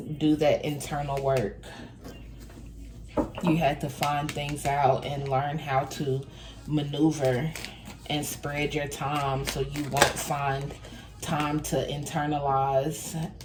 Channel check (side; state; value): both; identical; correlation 1.00